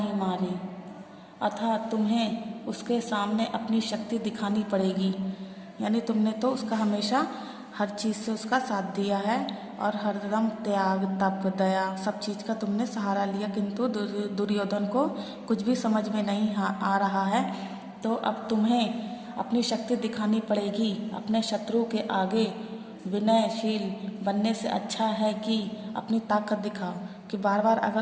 मारी, अतः तुम्हें उसके सामने अपनी शक्ति दिखानी पड़ेगी। यानी तुमने तो उसका हमेशा हर चीज़ से उसका साथ दिया है और हरदम त्याग, तप, दया सब चीज़ का तुमने सहारा लिया, किंतु दुर्योधन को कुछ भी समझ में नहीं आ रहा है। तो अब तुम्हें अपनी शक्ति दिखानी पड़ेगी। अपने शत्रु के आगे विनयशील बनने से अच्छा है कि अपनी ताकत दिखाओ। कि बार बार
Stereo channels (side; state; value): both; identical; correlation 1.00